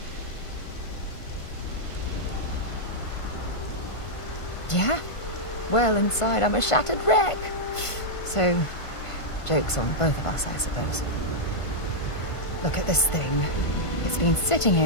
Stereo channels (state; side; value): late; right; 1.5 ms